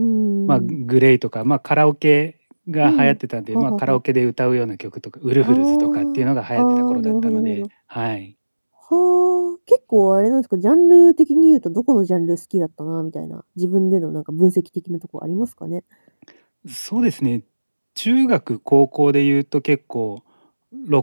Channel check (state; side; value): inverted; both; correlation -1.00